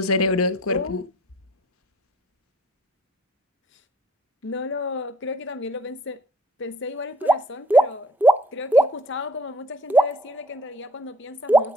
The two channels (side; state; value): both; normal; correlation 0.56